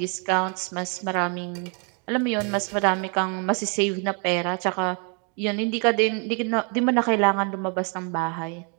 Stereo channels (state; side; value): quieter; left; 36.9 dB